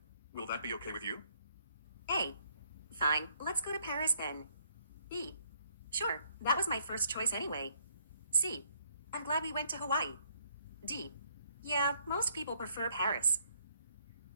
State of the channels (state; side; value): inverted; both; correlation -0.68